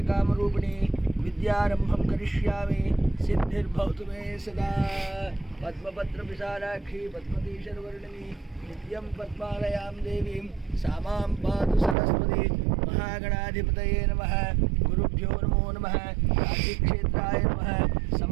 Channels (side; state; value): left; drops out; at 12.0 s